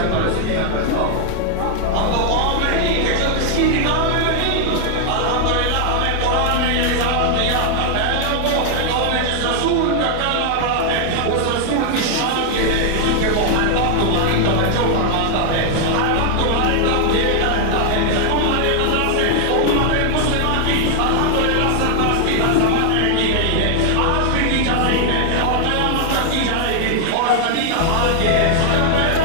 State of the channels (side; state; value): both; different; correlation 0.00